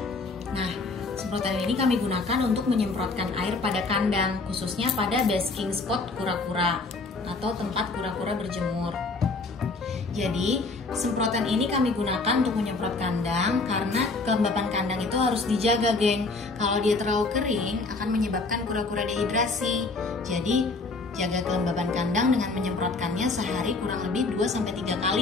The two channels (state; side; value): quieter; right; 3.6 dB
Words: Nah, semprotan ini kami gunakan untuk menyemprotkan air pada kandang, khususnya pada basking spot kura-kura atau tempat kura-kura berjemur. Jadi, semprotan ini kami gunakan untuk menyemprot kandang karena kelembapan kandang itu harus dijaga, geng. Kalau dia terlalu kering, akan menyebabkan kura-kura dehidrasi. Jadi, jaga kelembapan kandang dengan menyemprotkannya sehari kurang lebih 2-3